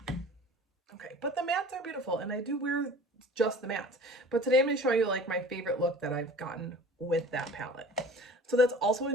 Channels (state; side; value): normal; both; correlation 0.43